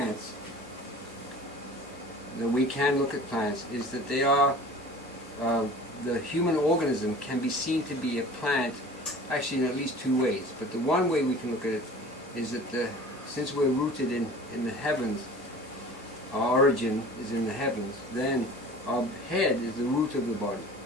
that we can look at plants, is that they are, the human organism can be seen to be a plant, actually in at least two ways. But the one way we can look at it is that since we're rooted in the heavens, our origin is in the heavens, then our head is the root of the body.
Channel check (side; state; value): both; normal; correlation 0.43